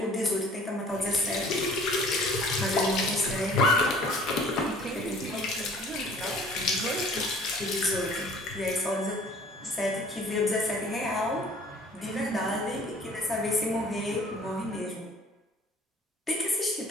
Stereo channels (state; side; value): normal; both; correlation 0.52